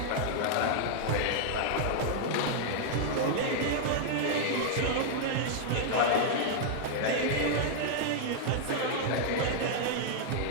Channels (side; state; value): both; different; correlation -0.01